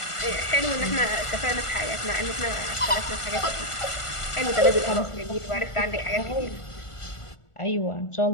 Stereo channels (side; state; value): right; late; 1.4 ms